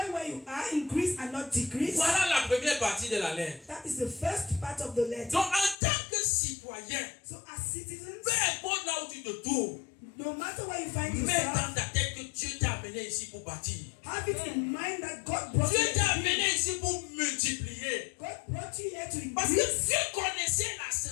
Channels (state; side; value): drops out; right; at 5.8 s